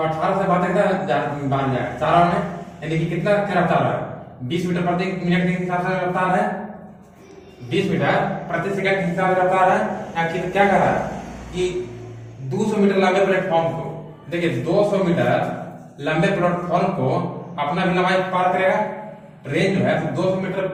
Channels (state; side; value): identical; both; correlation 1.00